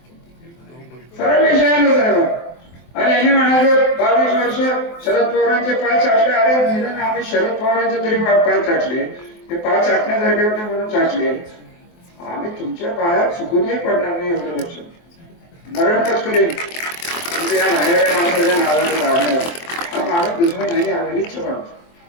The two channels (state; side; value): late; right; 23 ms